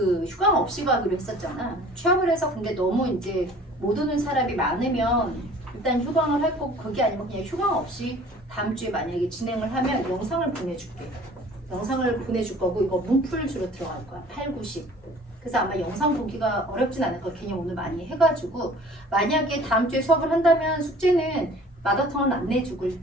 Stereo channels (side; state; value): both; normal; correlation 0.49